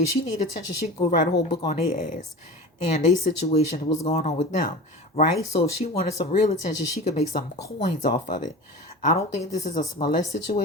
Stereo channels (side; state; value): both; normal; correlation 0.33